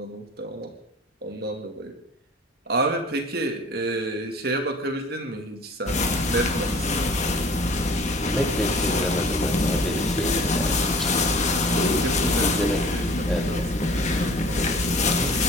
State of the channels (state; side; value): normal; both; correlation 0.48